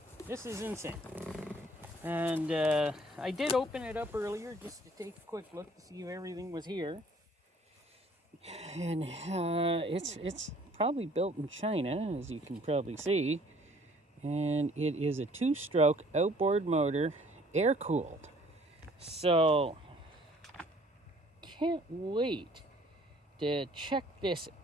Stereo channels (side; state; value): both; normal; correlation 0.57